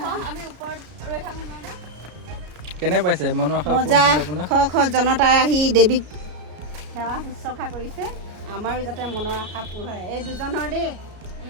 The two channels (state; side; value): late; left; 33 ms